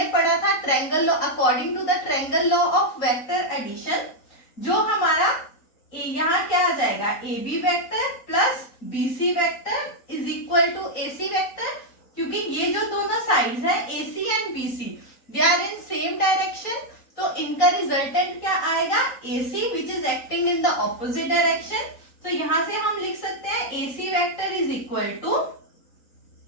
पढ़ा था triangle law, according to the triangle law of vector addition, जो हमारा यहाँ क्या आ जाएगा? AB vector plus BC vector is equal to AC vector. क्योंकि ये जो दोनों साइड्स हैं AC and BC they are in same direction, तो इनका रिजल्टेंट क्या आएगा? AC which is acting in the opposite direction. तो यहां से हम लिख सकते हैं AC vector is equal to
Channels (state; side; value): late; right; 3.9 ms